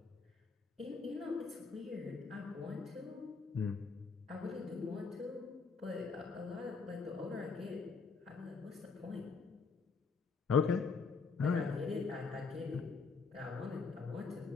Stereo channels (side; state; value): right; quieter; 4.8 dB